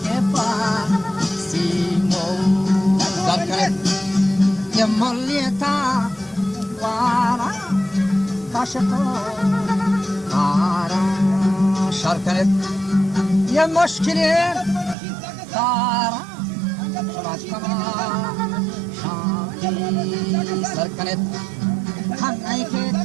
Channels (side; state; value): left; drops out; at 15.0 s